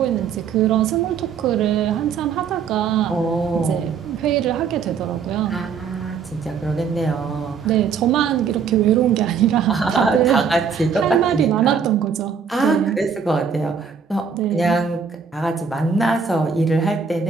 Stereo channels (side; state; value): left; quieter; 6.2 dB